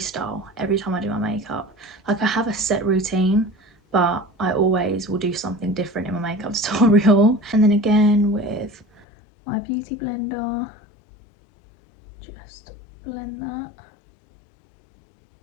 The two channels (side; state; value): right; drops out; at 9.1 s